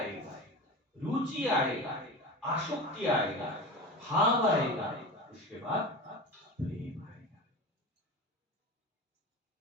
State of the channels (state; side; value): normal; both; correlation 0.28